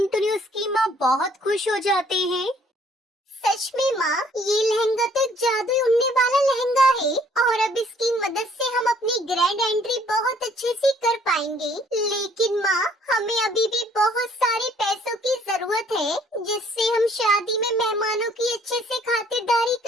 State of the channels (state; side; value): normal; both; correlation 0.61